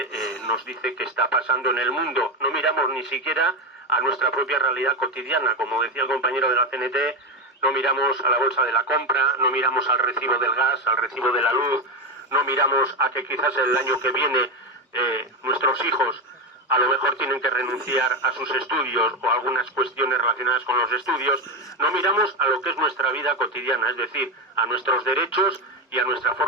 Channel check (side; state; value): both; normal; correlation 0.13